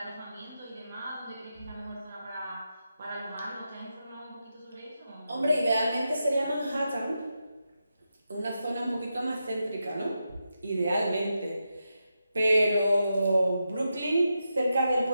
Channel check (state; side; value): inverted; both; correlation -0.87